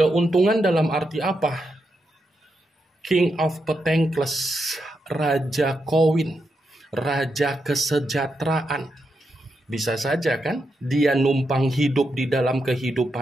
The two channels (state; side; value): normal; both; correlation 0.84